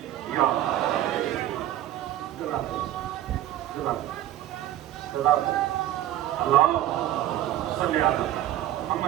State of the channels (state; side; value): quieter; left; 13.2 dB